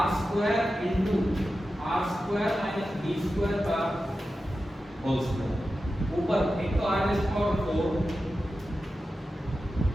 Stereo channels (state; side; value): normal; both; correlation 0.92